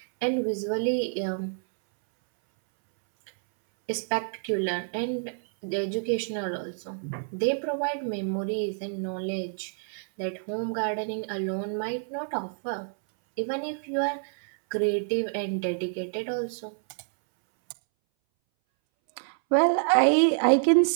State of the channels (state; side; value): silent; left; 60 dB below the other